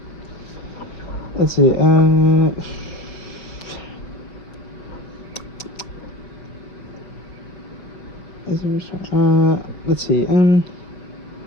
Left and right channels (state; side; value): late; right; 5.9 ms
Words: Let's see. Let's see.